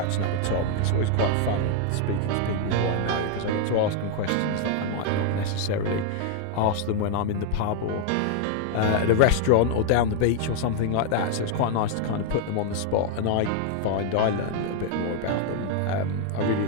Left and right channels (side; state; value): both; different; correlation 0.00